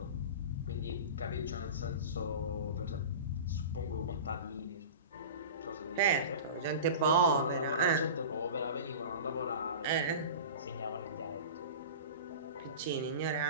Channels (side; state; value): both; inverted; correlation -0.33